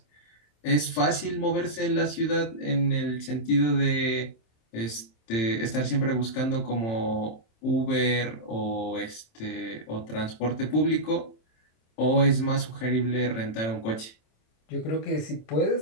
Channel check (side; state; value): right; late; 27 ms